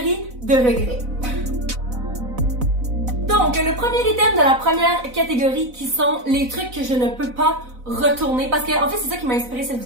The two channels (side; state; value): left; late; 4.0 ms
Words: de regrets. Donc, le premier item de la première catégorie qui sont les trucs que je ne peux pas retourner, parce que en fait c'est ça qui m'a inspiré cette